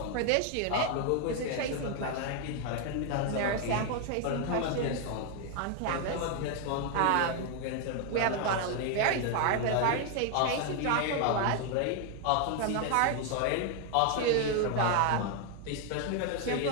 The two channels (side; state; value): both; different; correlation 0.01